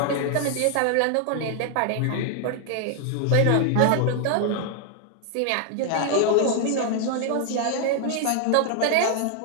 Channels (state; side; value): different; both; correlation 0.00